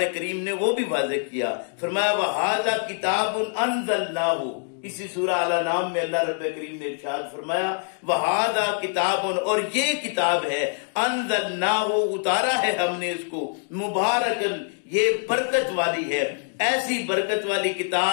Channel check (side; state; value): right; silent; 62 dB below the other